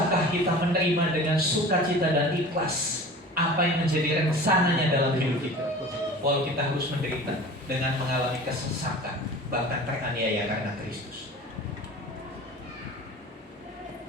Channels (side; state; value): both; normal; correlation 0.39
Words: kita menerima dengan sukacita dan ikhlas apa yang menjadi rencananya dalam hidup kita? Walau kita harus menderita dengan mengalami kesesakan, bahkan teraniaya karena Kristus.